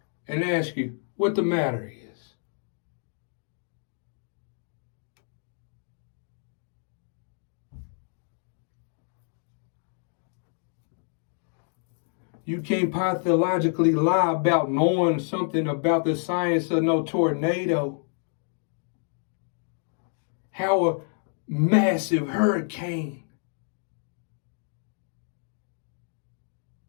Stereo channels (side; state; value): right; silent; 59 dB below the other